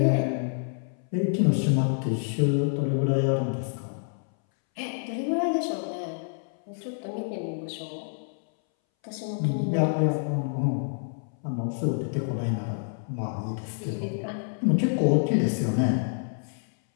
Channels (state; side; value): silent; right; 60 dB below the other